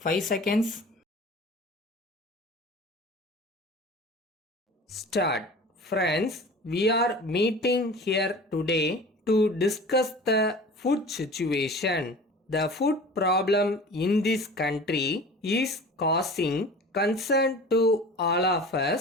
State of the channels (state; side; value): normal; both; correlation 0.40